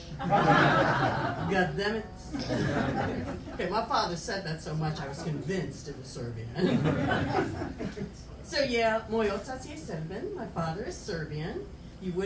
God damn it. Okay, my father said that so much I was convinced it was Serbian. So yeah, moj otac je Serbian. My father is Serbian. You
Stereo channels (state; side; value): identical; both; correlation 1.00